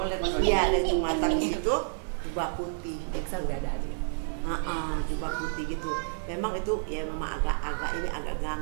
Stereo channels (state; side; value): silent; left; digital silence